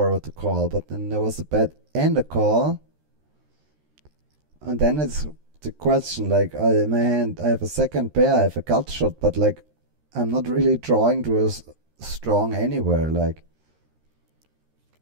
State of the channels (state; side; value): late; left; 13 ms